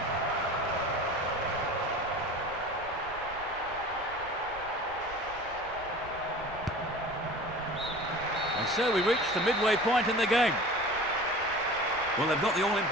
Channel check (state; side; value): noise; right; rumble, 18 dB below the sound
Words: And so we reach the midway point in the game. Well, they've got the